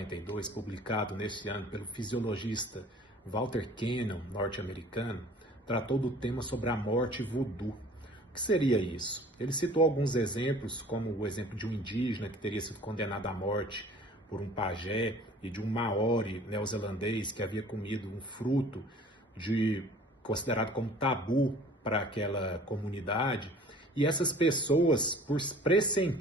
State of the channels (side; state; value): both; normal; correlation 0.49